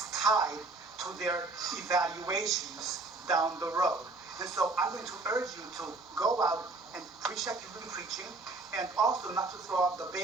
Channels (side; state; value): left; quieter; 3.4 dB